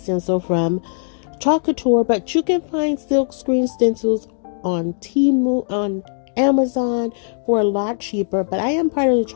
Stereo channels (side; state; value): right; silent; digital silence